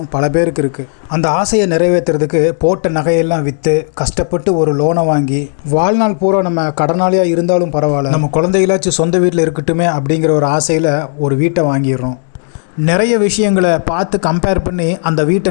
பல பேருக்கு இருக்குது. அந்த ஆசையை நிறைவேற்றுறதுக்கு போட்ட நகையெல்லாம் விற்று கஷ்டப்பட்டு ஒரு லோனை வாங்கி வாழ்நாள் பூரா நம்ம கடனாளியாக இருந்தாலும் பரவாயில்ல, நம்ம குழந்தைகளாச்சும் சொந்த வீட்டில் இருக்கட்டுமே அப்படிங்கிற ஒரு ஆசையில் ஒரு வீட்டை வாங்கிடுறோம். நிறைய விஷயங்களை பார்த்து கம்பேர் பண்ணி அந்த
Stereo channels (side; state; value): right; silent; 57 dB below the other